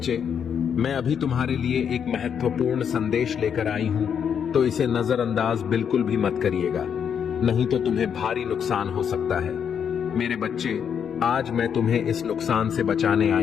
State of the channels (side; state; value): right; quieter; 7.8 dB